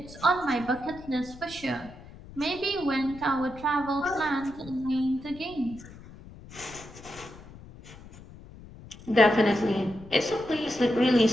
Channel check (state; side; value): noise; left; rumble, 18 dB below the sound